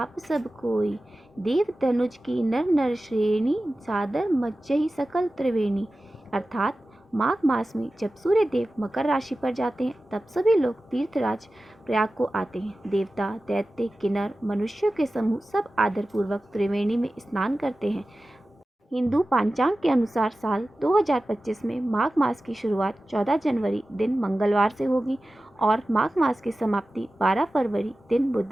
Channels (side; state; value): both; normal; correlation 0.95